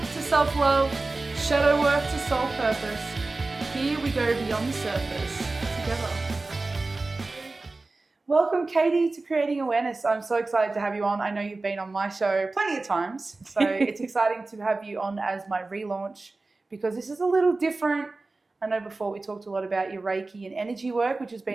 to self-love, shadow work to soul purpose, here we go beyond the surface together. Welcome, Katie, to Creating Awareness. I'm so excited to have you on. I know you've been on my show plenty of times, so it's exciting to have you on as my relaunch because this is a little different. I know before we talked a lot about your Reiki and energy work, which has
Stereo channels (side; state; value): left; quieter; 3.4 dB